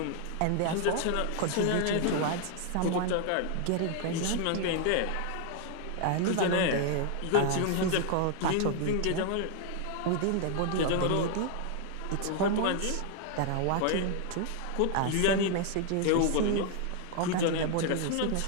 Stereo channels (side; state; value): both; different; correlation 0.00